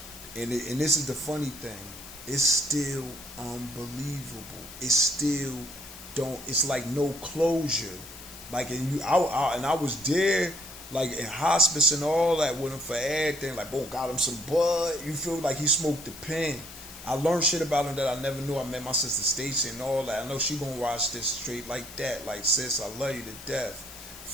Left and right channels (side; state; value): left; noise; hiss, 15 dB below the sound